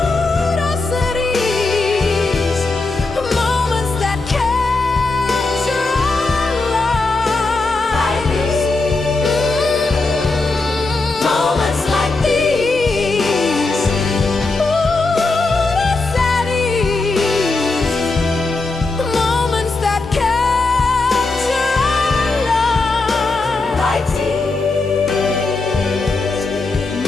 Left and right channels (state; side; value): quieter; right; 3.5 dB